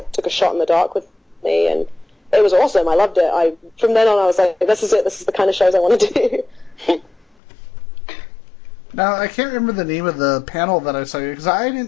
of took a shot in the dark with me, and it was awesome. I loved it. From then on, I was like, this is it. This is the kind of shows I want to do. Now, I can't remember the name of the panel that I saw you, because I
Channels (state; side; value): drops out; right; at 7.4 s